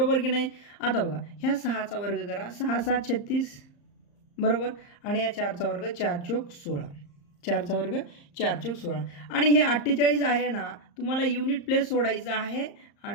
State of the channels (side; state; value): right; late; 34 ms